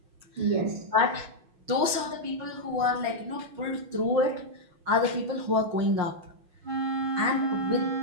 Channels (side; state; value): left; late; 6.3 ms